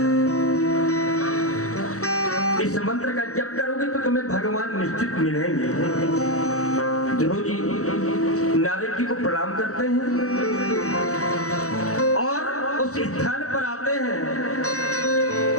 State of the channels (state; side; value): late; right; 0.65 ms